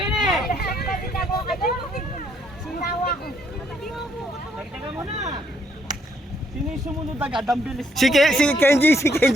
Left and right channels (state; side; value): normal; both; correlation 0.70